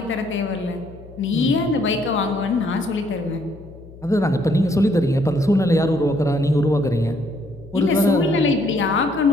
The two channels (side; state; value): left; noise; hum, 19 dB below the sound